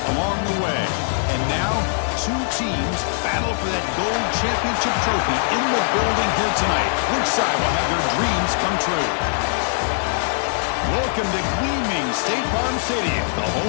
along the way. And now, two teams battle for that gold championship trophy in the building here tonight. Which side will have their dreams come true? Welcome to gleaming State Farm Stadium, the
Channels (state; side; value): silent; right; 65 dB below the other